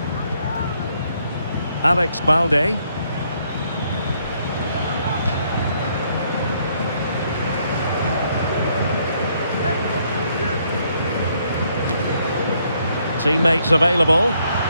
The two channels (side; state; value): both; inverted; correlation -0.71